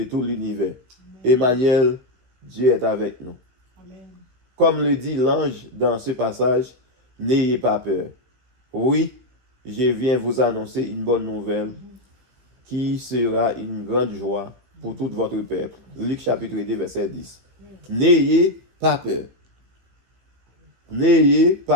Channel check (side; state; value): left; late; 16 ms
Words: tout l'univers. Emmanuel, Dieu est avec nous. Comme le dit l'ange dans ce passage, n'ayez pas peur. Oui, je viens vous annoncer une bonne nouvelle qui sera une grande joie pour tout votre peuple. Luc chapitre 2, verset 10. N'ayez pas peur. N'ayez